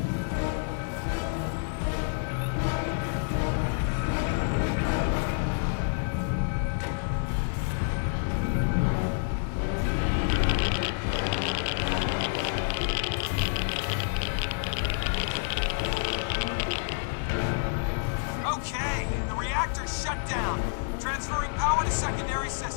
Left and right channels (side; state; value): right; silent; 59 dB below the other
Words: Okay, the reactor's shut down. Transferring power to secondary